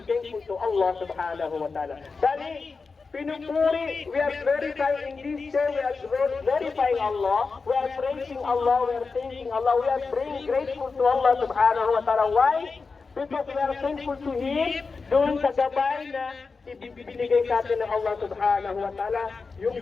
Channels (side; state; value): right; quieter; 4.5 dB